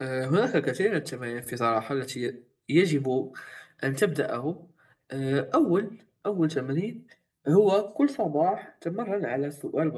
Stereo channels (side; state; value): both; identical; correlation 1.00